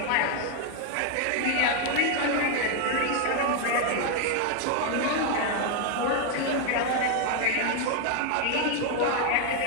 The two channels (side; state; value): both; different; correlation 0.01